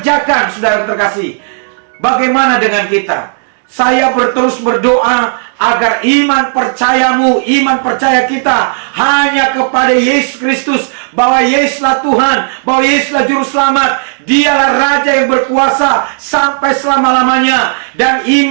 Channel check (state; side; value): silent; left; digital silence